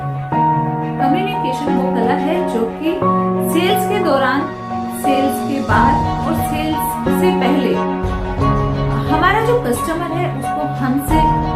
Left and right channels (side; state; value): both; identical; correlation 1.00